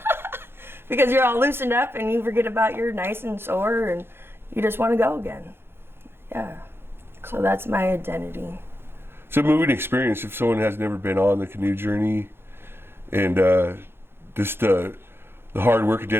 Because you're all loosened up and you forget about you're nice and sore and you just want to go again. Yeah. So that's my identity. It's a moving experience if someone has never been on the Canoe Journey, and just the hard work and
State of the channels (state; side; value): late; left; 0.11 ms